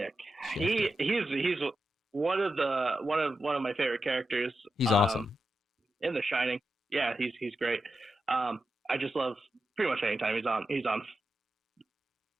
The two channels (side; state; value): both; normal; correlation 0.89